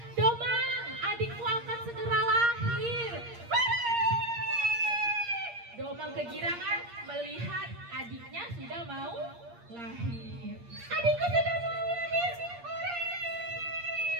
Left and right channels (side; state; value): left; late; 8.6 ms